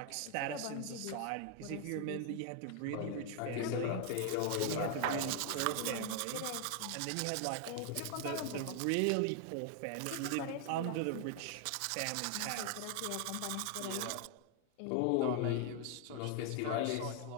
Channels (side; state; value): both; different; correlation 0.00